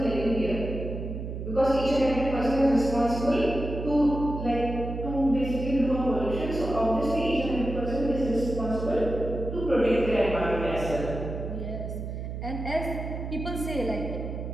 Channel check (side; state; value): right; noise; hum, 6 dB below the sound